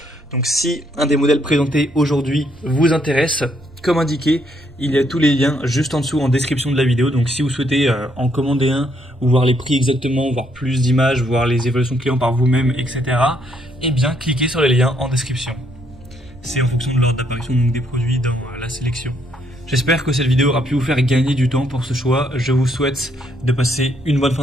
Donc si un des modèles présentés aujourd'hui vous intéresse, comme indiqué, il y a tous les liens juste en dessous en description de la vidéo. Donc si vous souhaitez en commander un, ou voir les prix exactement, voir plus d'images, voir les évaluations clients par vous-même, etc., eh bien cliquez sur les liens en description. C'est en fonction de l'ordre d'apparition des produits dans la sélection. J'espère que cette vidéo aura pu vous faire gagner du temps pour ce choix. Je vous souhaite de passer une bonne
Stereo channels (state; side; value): noise; right; rumble, 26 dB below the sound